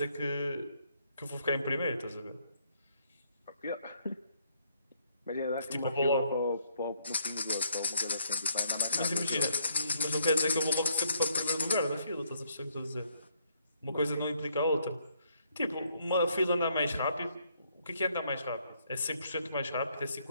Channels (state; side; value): inverted; both; correlation -0.69